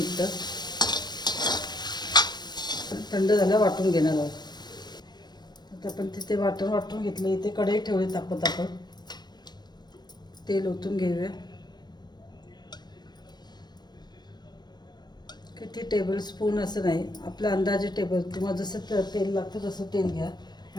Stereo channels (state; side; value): late; right; 0.21 ms